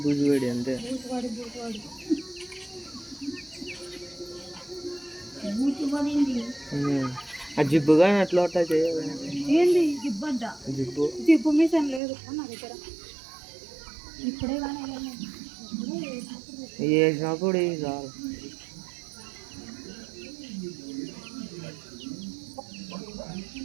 బూజువాడి అంతే. ఆ జిబ్బుగా అట్లా ఏంది జిబ్బు అంట? జిబ్బు జిబ్బు మీసం లేదు నా దగ్గర. ఇప్పుడే కానీ వేసినప్పుడు చాలు.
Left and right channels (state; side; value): drops out; left; at 12.0 s